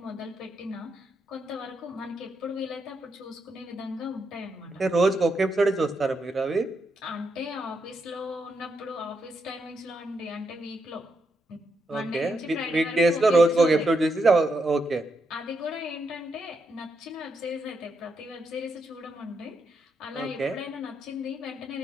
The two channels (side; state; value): both; normal; correlation 0.81